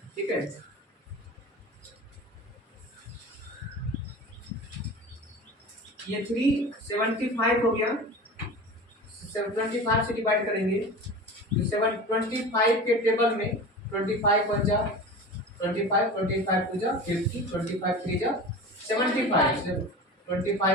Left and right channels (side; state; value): both; normal; correlation 0.33